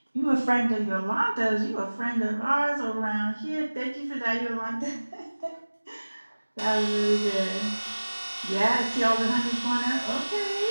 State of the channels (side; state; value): both; inverted; correlation -1.00